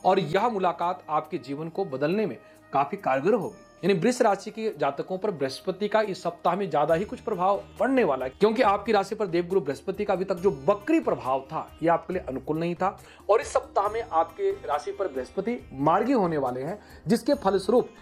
और यह मुलाकात आपके जीवन को बदलने में काफी कारगर होगी। यानी वृष राशि के जातकों पर बृहस्पति का इस सप्ताह में ज्यादा ही कुछ प्रभाव पड़ने वाला है, क्योंकि आपकी राशि पर देवगुरु बृहस्पति का अभी तक जो वक्री प्रभाव था यह आपके लिए अनुकूल नहीं था और इस सप्ताह में आपके राशि पर बृहस्पति मार्गी होने वाले हैं, जिसके फलस्वरूप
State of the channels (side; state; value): both; identical; correlation 1.00